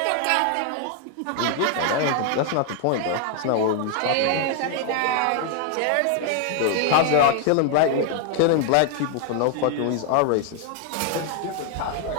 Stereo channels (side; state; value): both; different; correlation 0.00